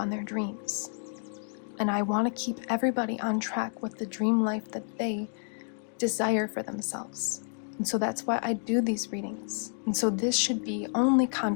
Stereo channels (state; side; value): silent; right; 58 dB below the other